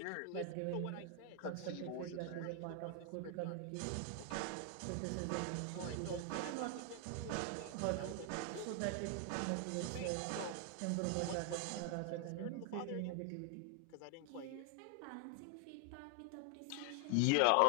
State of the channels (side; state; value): both; different; correlation 0.00